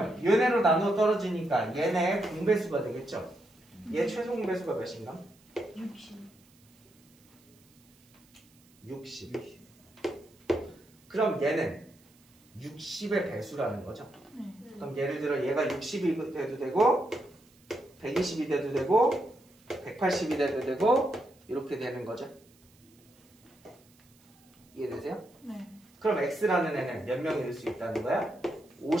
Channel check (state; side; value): noise; right; hiss, 30 dB below the sound